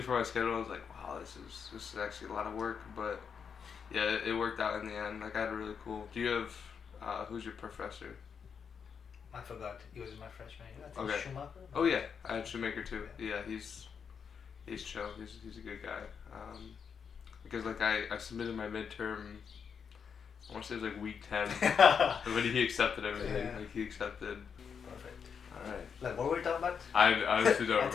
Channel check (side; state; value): right; quieter; 6.7 dB